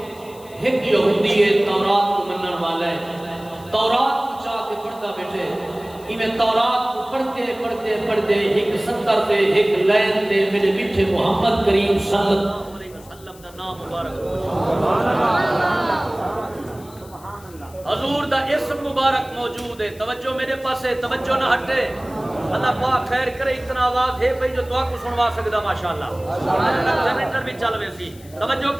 ایک یہودی ہے تورات کو منن والا ہے، تورات کو چاہ کے پڑھتا بیٹھے میں تورات کو پڑھتے پڑھتے پڑھتے ایک سطر تے ایک لائن تے میرے میٹھے محمد کریم صلی اللہ علیہ وسلم دا نام مبارک حضور دا اسم مبارک موجود ہے. توجہ میرے پاس ہے، توجہ نہ ہٹے. اللہ پاک خیر کرے. اتنا آواز ہے بھئی جو دعا کو سنوا سکدا ماشاءاللہ جنریٹر بھی چل وے سی. توجہ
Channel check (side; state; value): left; noise; hiss, 23 dB below the sound